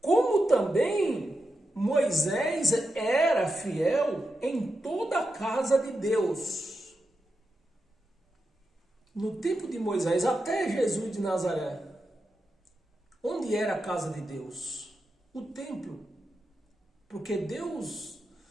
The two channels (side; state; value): both; normal; correlation 0.88